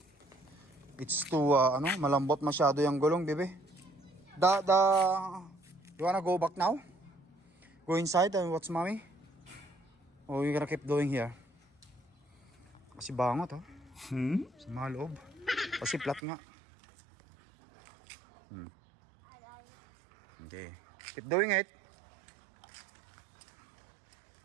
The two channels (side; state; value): left; drops out; at 16.2 s